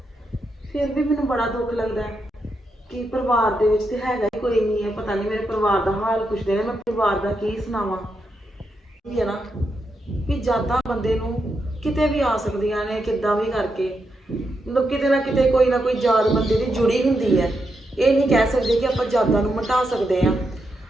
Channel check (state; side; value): normal; both; correlation 0.84